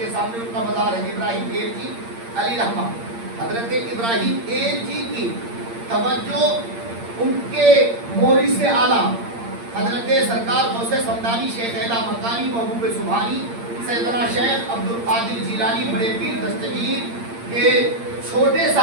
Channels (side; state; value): left; late; 8.7 ms